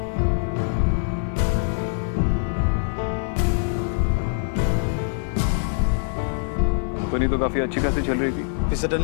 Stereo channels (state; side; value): silent; right; 55 dB below the other